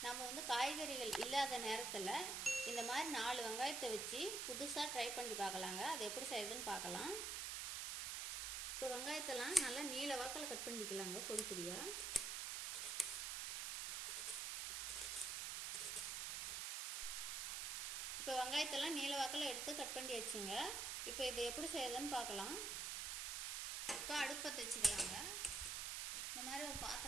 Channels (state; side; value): noise; right; hiss, 1 dB below the sound